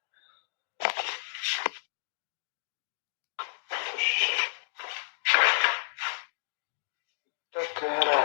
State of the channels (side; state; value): right; silent; digital silence